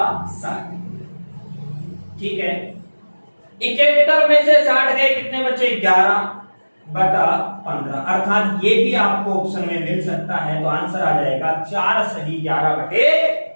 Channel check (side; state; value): both; inverted; correlation -1.00